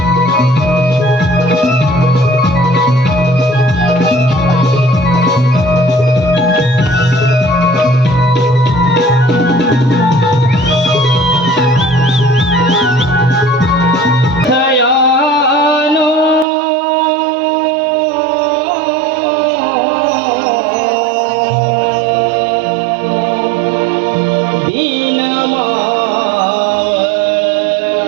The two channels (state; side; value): drops out; left; at 16.4 s